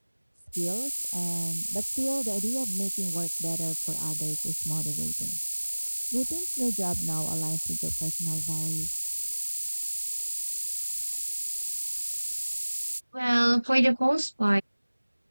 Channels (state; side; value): inverted; both; correlation -1.00